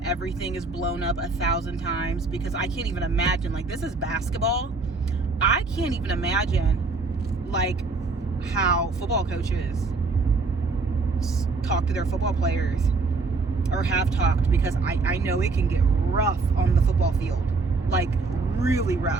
everything is blown up 1,000 times, because I can't even imagine, this is basketball. I can't even imagine, how football coaches talk to their football players, or have talked, because I know it can get rough on the football field, really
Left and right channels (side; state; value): left; quieter; 3.9 dB